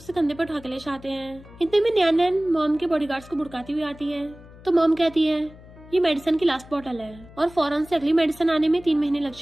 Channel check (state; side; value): noise; left; hum, 20 dB below the sound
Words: कंधे पर उठा के ले जाते हैं। इतने में नैनन मॉम के बॉडीगार्ड्स को बुड़काती हुई आती है। तो मॉम कहती है ये मेडिसिन की लास्ट बॉटल है और फौरन से अगली मेडिसिन आने में 3 महीने लग